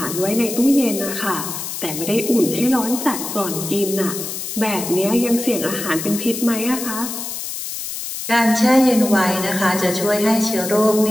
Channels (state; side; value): noise; left; hiss, 6 dB below the sound